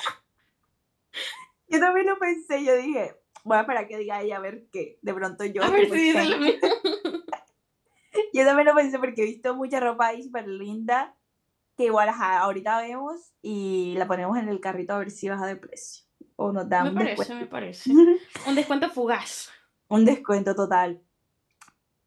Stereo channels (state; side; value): identical; both; correlation 1.00